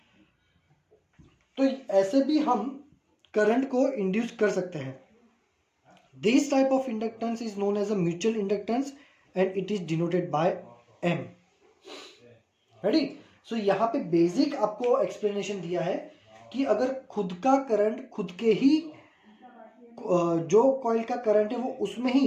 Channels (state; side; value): identical; both; correlation 1.00